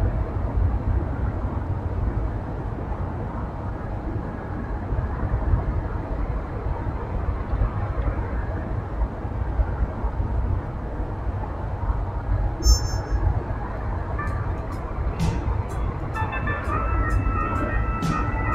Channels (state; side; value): identical; both; correlation 1.00